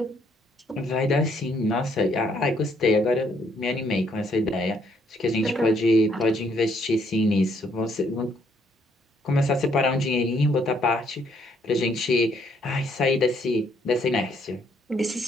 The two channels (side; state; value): both; normal; correlation 0.69